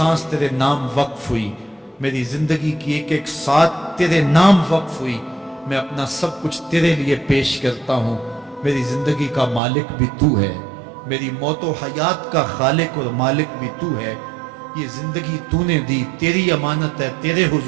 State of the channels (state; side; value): drops out; left; at 9.6 s